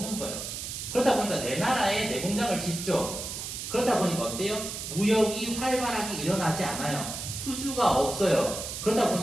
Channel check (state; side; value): noise; right; hiss, 6 dB below the sound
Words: 거예요. 그러다 보니까 내 나라에 내 공장을 짓죠. 그러다 보니까 어때요? 무역이 활발하게 일어나지 않아요. 수주가 없어요. 그러다